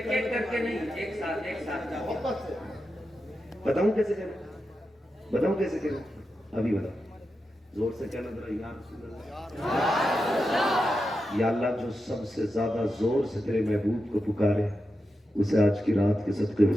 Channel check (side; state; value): both; normal; correlation 0.89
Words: کر کے نہیں, ایک ساتھ محبت سے بتاؤں کیسے کروں, بتاؤں کیسے کروں, ابھی بتاؤ. زور سے کہنا ذرا, یا رسول اللہ, یا اللہ جو سب سے زیادہ زور سے تیرے محبوب کو پکارے, اسے آج کی رات کے صدقے